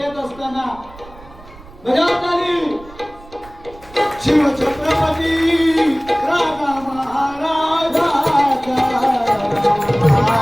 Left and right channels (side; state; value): right; noise; rumble, 21 dB below the sound